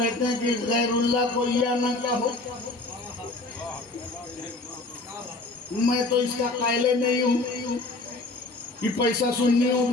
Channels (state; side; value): quieter; right; 3.1 dB